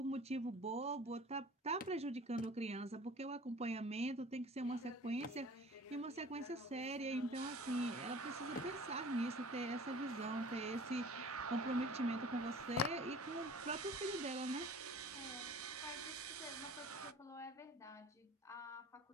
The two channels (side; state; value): both; normal; correlation 0.45